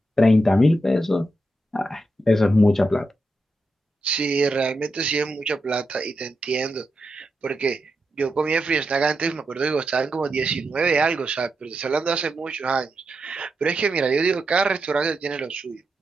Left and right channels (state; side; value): normal; both; correlation 0.86